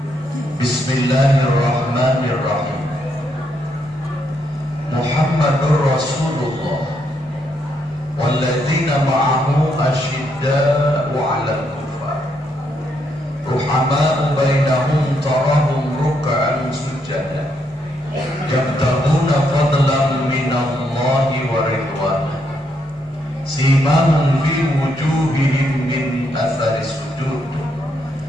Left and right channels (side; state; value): both; normal; correlation 0.76